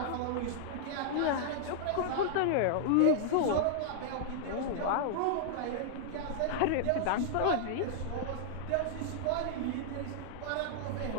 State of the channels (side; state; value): both; different; correlation -0.01